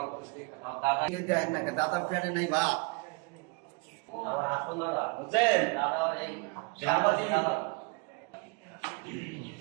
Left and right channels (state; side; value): quieter; left; 31.7 dB